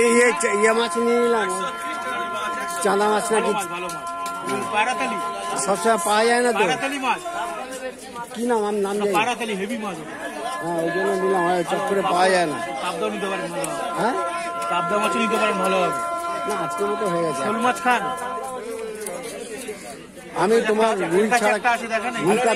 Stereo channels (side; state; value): both; identical; correlation 1.00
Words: ইয়ে মাছ নিয়ে নিলাম, চাঁদা মাছ নাকি সবসময় পাওয়া যায় না তো। কি নাম? আমার নাম হেভি মাছ। হ্যাঁ, ওই জন্য নিলাম, চট করে পাওয়া যায় না। হ্যাঁ, পাবদা মাছ নিতে পারেন, ভালো হবে। না, আজকের মতো হয়ে গেছে। শোল মাছ খান? আমি তোমার রুই